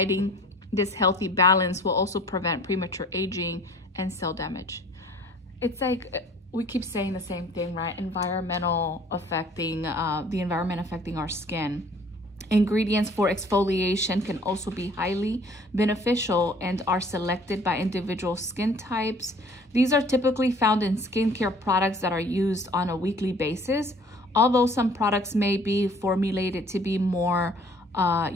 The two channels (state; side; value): normal; both; correlation 0.52